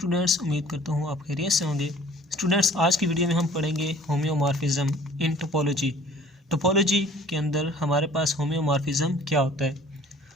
उम्मीद करता हूँ आप खैरियत से होंगे। स्टूडेंट्स, आज की वीडियो में हम पढ़ेंगे होम्योमॉर्फिज्म इन टोपोलॉजी। टोपोलॉजी के अंदर हमारे पास होम्योमॉर्फिज्म क्या होता है।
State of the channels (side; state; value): both; normal; correlation 0.52